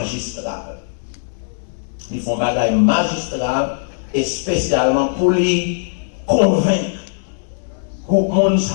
Ils font bagaille magistral et spécialement pour les convaincre. Pour monde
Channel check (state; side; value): silent; right; digital silence